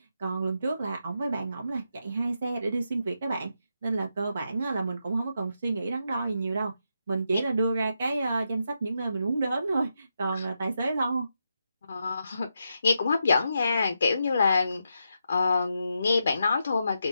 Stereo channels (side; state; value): both; inverted; correlation -0.84